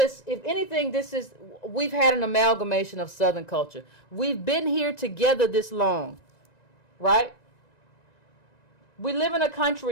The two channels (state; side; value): late; right; 1.9 ms